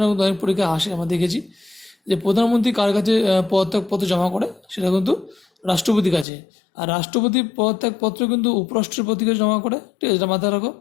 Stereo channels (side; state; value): right; drops out; at 6.2 s